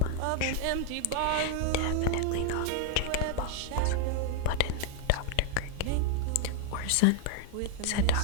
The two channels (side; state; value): both; different; correlation 0.00